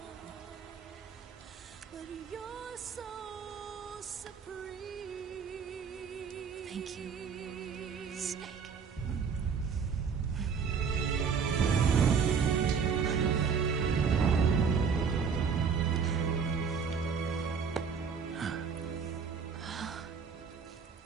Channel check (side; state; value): left; quieter; 6.2 dB